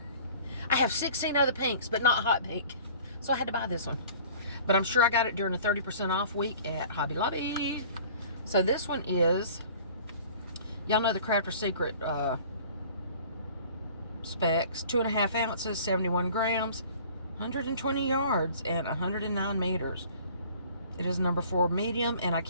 I have 16 other pinks, but not hot pink. So I had to buy this one. But I'm sure I got it during a 30% off week at Hobby Lobby. So this one is, y'all know the Crafter's Secret specs. 2.5 ounces, 71 grams, 120 yards, and 109 meters. It is number 4 medium, and I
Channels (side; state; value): both; inverted; correlation -0.47